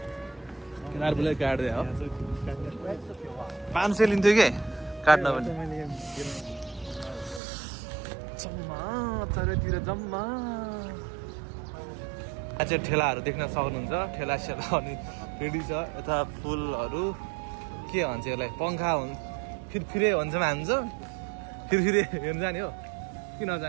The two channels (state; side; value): drops out; left; at 7.4 s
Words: केदार बुढोले काट्दै हो 500 लिन्थ्यो कि काट्न पनि जम्मा चारैतिर जम्मा चाहिँ ठेलाहरू देख्न सक्नुहुन्छ ठेला सेला अनि रेडी छ यता फुलहरू के भन्छ यसलाई पङ्खा हुन्छ फिरफिरे भन्छ हान्छ फिरफिरे हेर्नु जाने हो कि